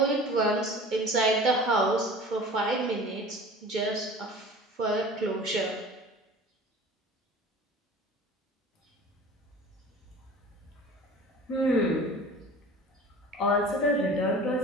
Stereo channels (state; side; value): normal; both; correlation 0.41